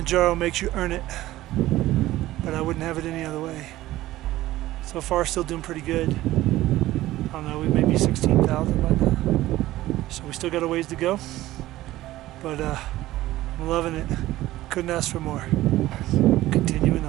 makes you earn it, but I wouldn't have it any other way. So far, still doing pretty good. I don't know, we may be 16,000 by now. So we still got a ways to go, but I'm loving it. Couldn't ask for more. Continuing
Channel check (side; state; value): left; quieter; 15.9 dB